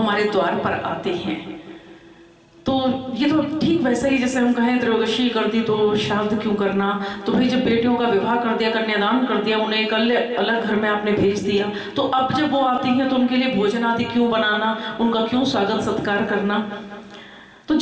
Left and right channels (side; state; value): both; identical; correlation 1.00